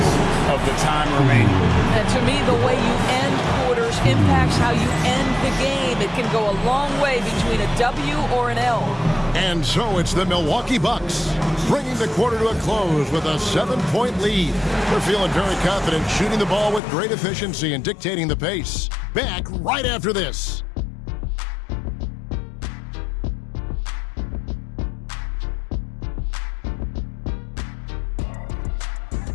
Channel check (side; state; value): right; drops out; at 16.8 s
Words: of the time remaining. And to me, the way you end quarters impacts how you end the game. It can go a long way between a W or an L. And so it's the Milwaukee Bucks, bringing the quarter to a close with a 7-point lead. They're feeling very confident, shooting the ball with great efficiency and dictating the pace. Back right after this.